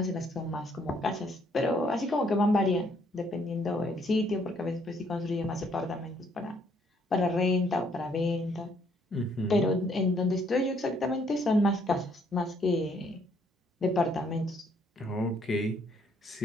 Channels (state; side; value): normal; both; correlation 0.68